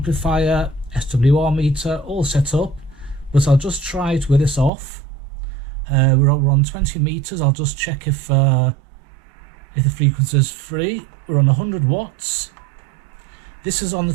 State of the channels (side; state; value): left; drops out; at 4.7 s